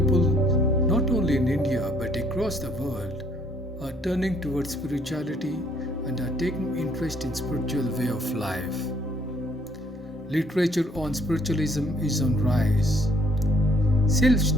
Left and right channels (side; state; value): both; normal; correlation 0.64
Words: not only in India but across the world, are turning towards spirituality and are taking interest in spiritual way of life. Literature on spiritualism is on rise.